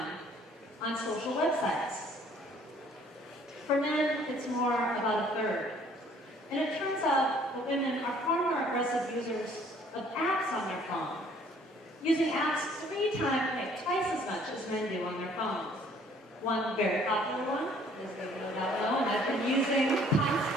on social websites. For men, it's more about a third. And it turns out that women are far more aggressive users of apps on their phone, using apps twice as much as men do on their phones. One very popular one, as they no doubt know, and I've been using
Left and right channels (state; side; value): normal; both; correlation 0.59